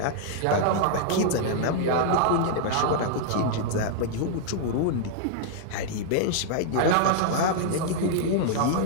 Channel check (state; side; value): different; both; correlation -0.01